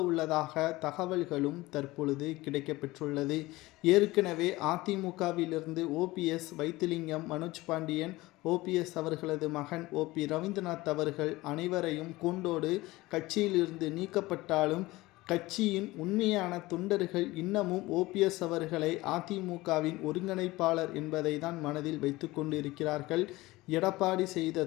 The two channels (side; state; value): right; quieter; 19.6 dB